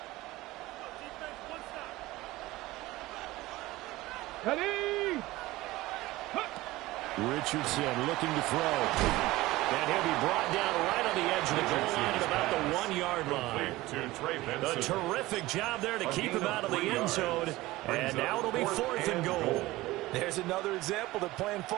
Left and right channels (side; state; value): left; quieter; 18.6 dB